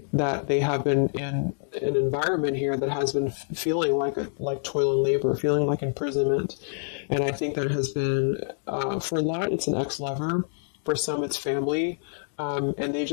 that they have been in an environment here that has been feeling like toil and labor, feeling like imprisonment. And I think that it has been, for a lot, it's an ex-lover. For some, it's family. And they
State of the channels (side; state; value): right; silent; digital silence